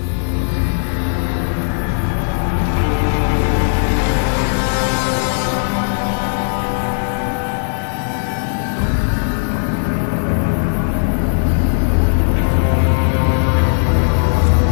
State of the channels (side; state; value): right; silent; 55 dB below the other